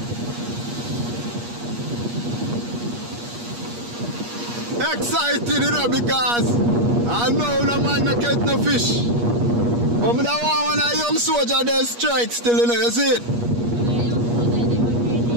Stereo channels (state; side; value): late; left; 8.4 ms